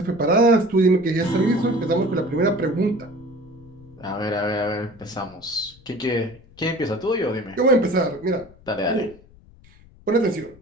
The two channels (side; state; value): left; noise; rumble, 25 dB below the sound